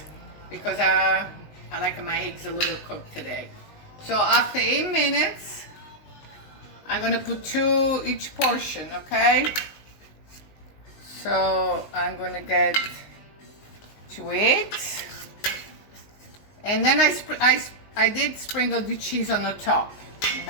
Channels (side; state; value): right; late; 19 ms